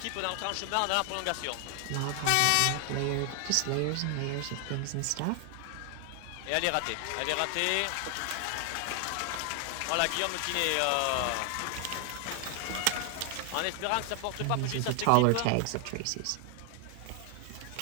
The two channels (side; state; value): both; different; correlation 0.00